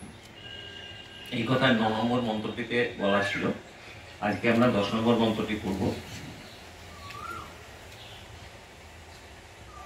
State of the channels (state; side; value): identical; both; correlation 1.00